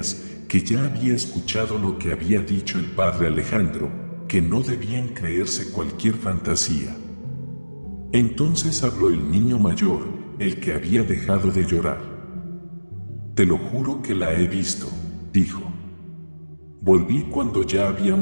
que ya había escuchado lo que había dicho el padre Alejandro, que no debían creerse cualquier fantasía. Entonces habló el niño mayor, el que había dejado de llorar. Te lo juro que la he visto, dijo. Volví cuando ya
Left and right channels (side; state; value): both; inverted; correlation -1.00